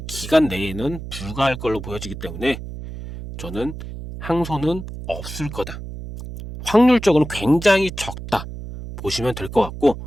기간 내에는 불가할 걸로 보여지기 때문에 저는 항소는 없을 거다. 확률적으로는 굉장히 적다. 보시면 될 것 같고,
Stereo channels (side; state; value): right; noise; hum, 10 dB below the sound